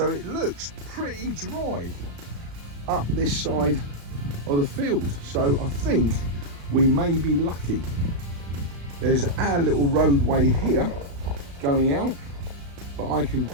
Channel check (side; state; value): left; late; 35 ms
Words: it looks pretty dry up this side of the field. So I think we may be lucky. There's our little roadway here going out, but I can